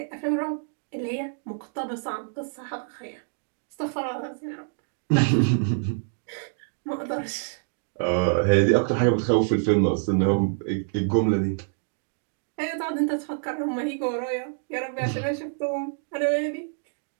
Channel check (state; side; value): silent; left; digital silence